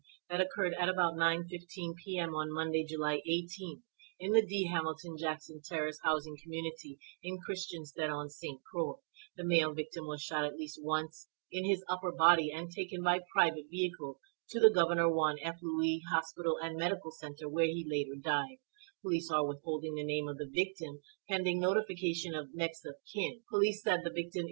that occurred at about 9:15 p.m. on Monday, July 18th in the D. Hamilton Jackson Terrace housing community in Christiansted on St. Croix. The male victim was shot at least once in his upper body and taken by private vehicle to the Governor Juan F. Louis Hospital and Medical Center, where he later died. Police are withholding the name of the victim, pending notification of next of kin. Police said the victim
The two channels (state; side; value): silent; left; digital silence